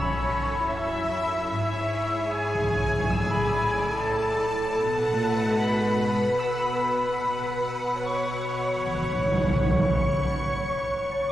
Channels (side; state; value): both; normal; correlation 0.90